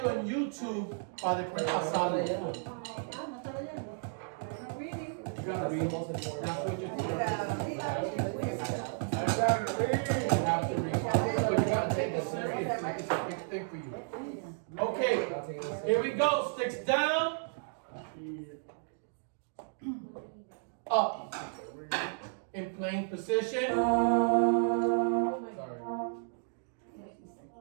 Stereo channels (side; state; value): left; silent; digital silence